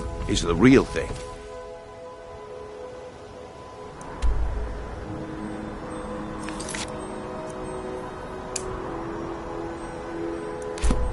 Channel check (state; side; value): identical; both; correlation 1.00